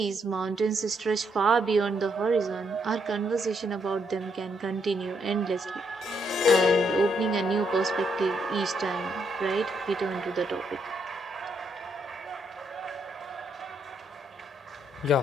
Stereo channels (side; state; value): both; normal; correlation 0.75